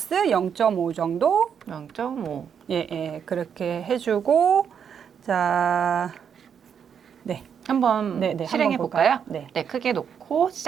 0.5 정도 0.5 예, 그렇게 해주고 자, 네. 한번 네, 실행해 한번 볼까요? 볼까요? 네. 네, 크게 놓고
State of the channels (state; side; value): quieter; left; 7.6 dB